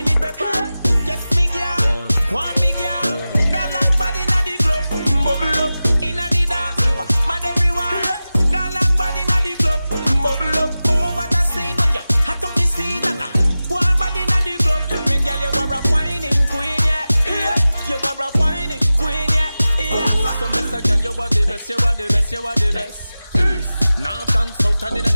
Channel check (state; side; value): inverted; both; correlation -0.96